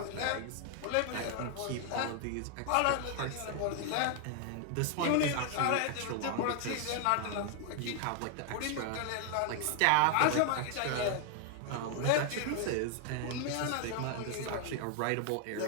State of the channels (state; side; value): different; both; correlation 0.00